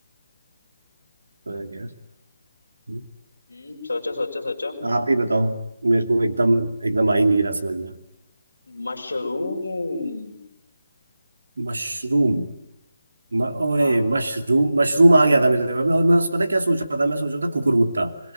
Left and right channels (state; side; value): inverted; both; correlation -0.95